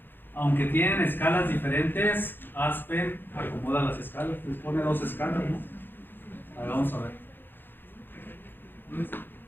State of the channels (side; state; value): right; late; 0.097 ms